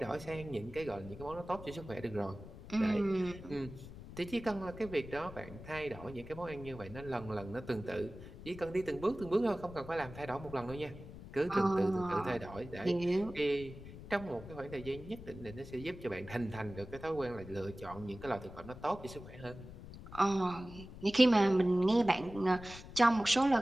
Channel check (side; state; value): left; noise; rumble, 14 dB below the sound